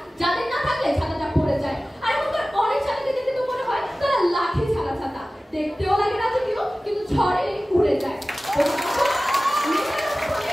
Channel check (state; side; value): normal; both; correlation 0.97